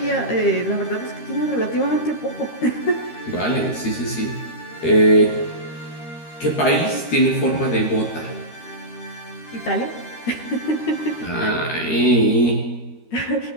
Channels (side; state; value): right; late; 13 ms